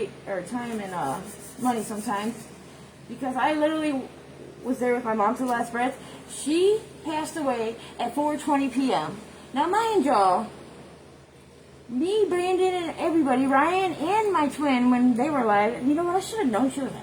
Or time and money sometimes. Because I literally was there with my mom to the last breath. She passed away at 4:20 p.m. Now, mind y'all, me, Brandon, and everybody, Ryan, and my twin, when they were alive, you know what, I should have known she was an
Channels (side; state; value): both; identical; correlation 1.00